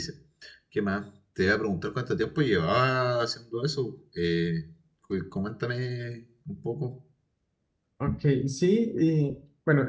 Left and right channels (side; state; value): both; identical; correlation 1.00